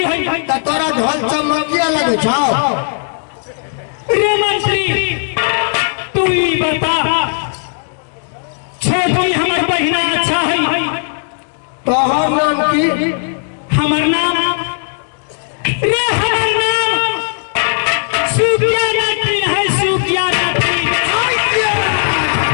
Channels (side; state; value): right; silent; digital silence